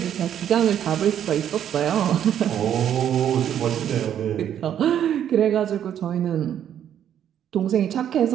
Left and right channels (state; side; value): quieter; left; 9.9 dB